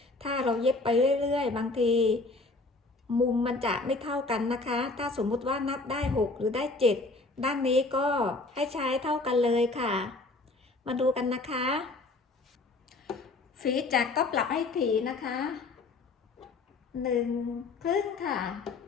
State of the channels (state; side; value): quieter; right; 3.4 dB